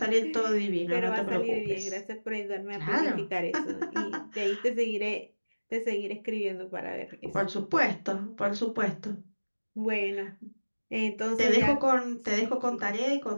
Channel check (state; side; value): inverted; both; correlation -1.00